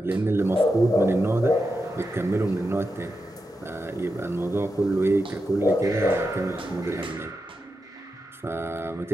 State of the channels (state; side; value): normal; both; correlation 0.88